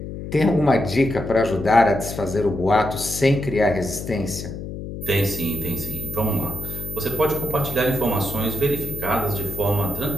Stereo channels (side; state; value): left; noise; hum, 8 dB below the sound